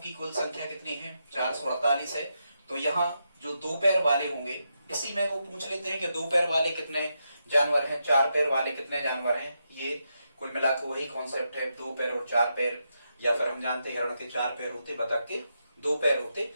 कुल संख्या कितनी है, 448 है, तो यहाँ जो 2 पैर वाले होंगे, इसी में वो पूछ लेते हैं कि 2 पैर वाले कितने जानवर हैं, 4 पैर वाले कितने जानवर हैं। ये कुल मिलाकर वही कॉन्सेप्ट है, 2 पैर और 4 पैर। या फिर हम जानते हैं हिरण के 4 पैर होते, बतख के 2 पैर होते।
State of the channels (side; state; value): both; inverted; correlation -0.84